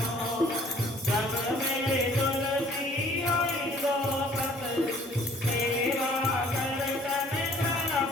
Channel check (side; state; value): both; normal; correlation 0.56